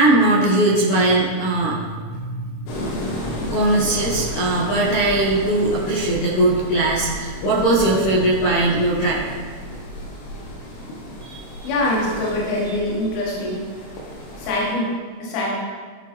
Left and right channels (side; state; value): right; late; 26 ms